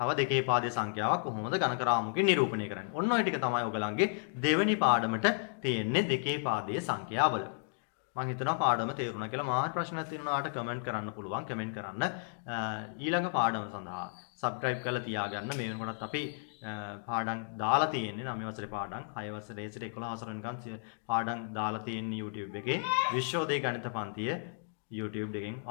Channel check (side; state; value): right; silent; digital silence